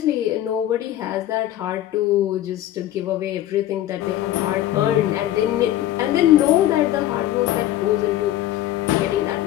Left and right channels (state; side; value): quieter; right; 13.4 dB